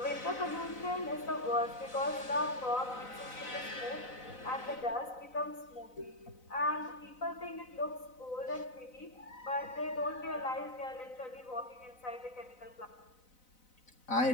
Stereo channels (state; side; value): late; right; 4.0 ms